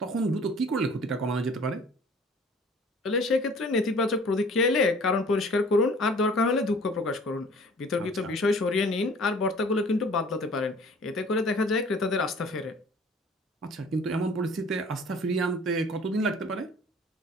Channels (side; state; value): both; normal; correlation 0.50